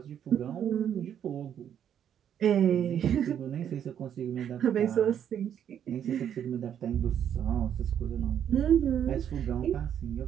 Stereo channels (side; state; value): left; quieter; 9.3 dB